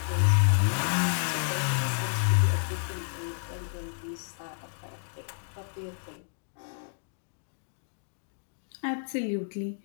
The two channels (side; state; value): right; silent; digital silence